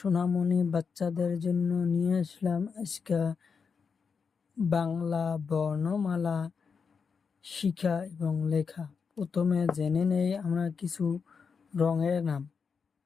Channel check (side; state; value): right; quieter; 5.7 dB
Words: বাচ্চাদের জন্য নিয়ে আসলাম আজকে বাংলা বর্ণমালা শিখা এবং লেখা। প্রথমে জেনে নেই আমরা কিছু রঙের নাম।